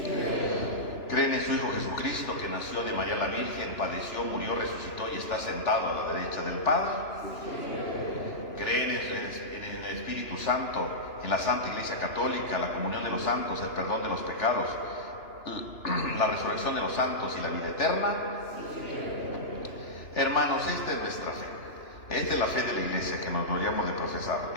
¿Creen en su Hijo Jesucristo, que nació de María la Virgen, padeció, murió, resucitó y está sentado a la derecha del Padre? ¿Creen en el Espíritu Santo, en la Santa Iglesia Católica, la comunión de los santos, el perdón de los pecados, la resurrección de los santos y la vida eterna? Hermanos, esta es nuestra fe. Esta es la fe de la Iglesia que nos gloriamos de profesar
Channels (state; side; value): late; right; 2.9 ms